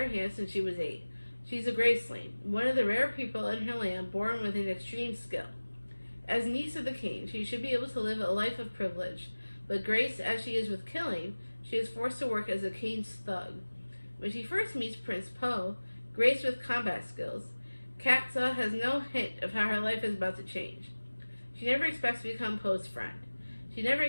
hands since she was 8. She's a graceling, one of the rare people in her land born with an extreme skill. As niece of the king, she should be able to live a life of privilege, but graced as she is with killing, she is forced to work as a king's thug. When she first meets Prince Po, graced with combat skills, Katsa has no hint of how her life is about to change. She never expects to become Po's friend. She never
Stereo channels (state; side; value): inverted; both; correlation -1.00